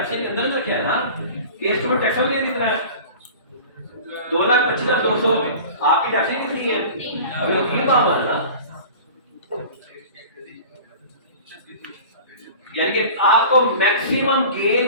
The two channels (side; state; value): both; inverted; correlation -0.40